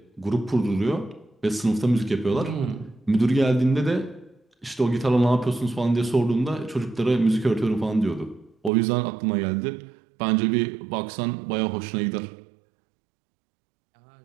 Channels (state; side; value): drops out; left; at 8.7 s